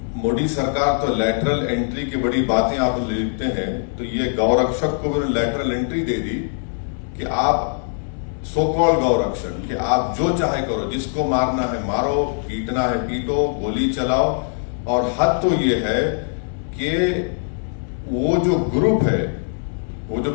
मोदी सरकार तो लेटरल एंट्री की बड़ी बातें आप लिखते हैं, तो ये गौरक्षक को भी लेटरल एंट्री दे दी कि आप सो कॉल्ड गौरक्षक, कि आप जो चाहे करो, जिसको मारना है मारो, पीटना है पीटो, गोली चलाओ। और हद तो ये है कि वो जो ग्रुप है, वो जो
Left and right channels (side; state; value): right; silent; digital silence